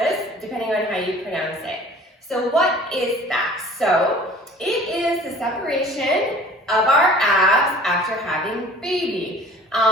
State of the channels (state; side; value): normal; both; correlation 0.47